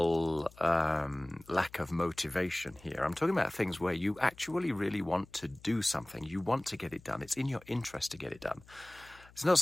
lack of motivation here. I'm talking about things where you actually really want to do something. You want to get it done. It's in your interest to get it done. It's not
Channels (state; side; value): noise; left; hum, 24 dB below the sound